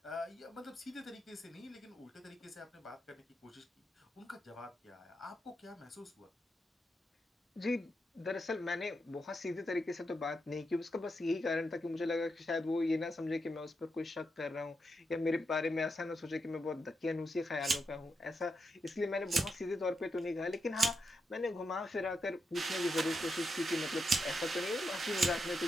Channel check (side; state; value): both; normal; correlation 0.84